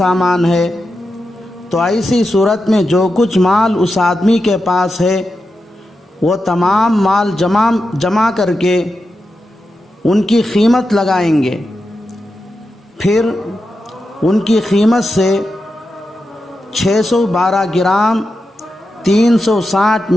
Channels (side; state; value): both; normal; correlation 0.89